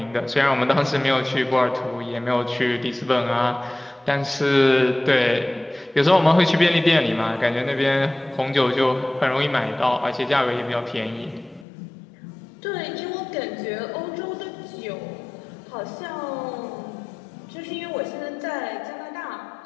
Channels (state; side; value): drops out; right; at 11.7 s